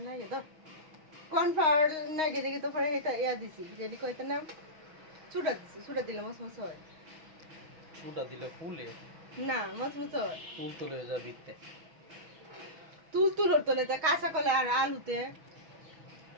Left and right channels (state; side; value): late; left; 6.4 ms